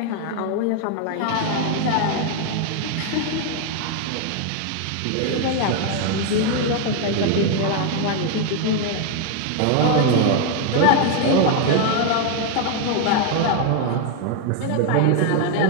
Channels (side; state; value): both; different; correlation 0.01